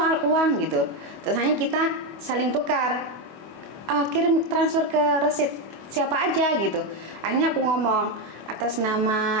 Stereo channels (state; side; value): late; left; 25 ms